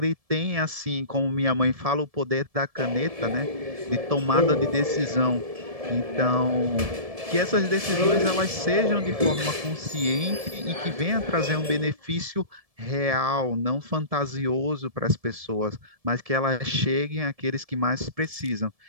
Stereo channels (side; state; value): left; late; 1.7 ms